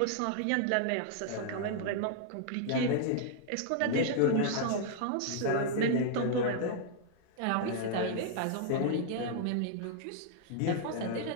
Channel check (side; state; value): both; different; correlation 0.00